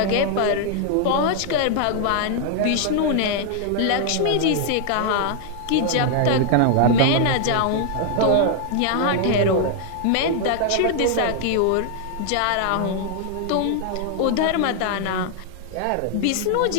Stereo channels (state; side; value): different; both; correlation 0.00